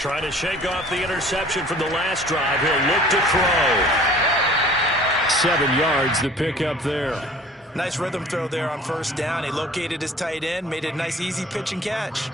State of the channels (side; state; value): both; normal; correlation 0.49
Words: to shake off the interception from the last drive. He'll look to throw. 7 yards the pickup there. Nice rhythm throw there on first down. He located his tight end, made a nice easy pitch and catch.